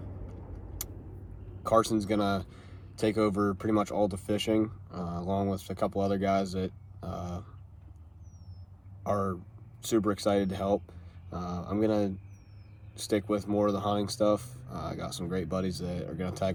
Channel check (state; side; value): identical; both; correlation 1.00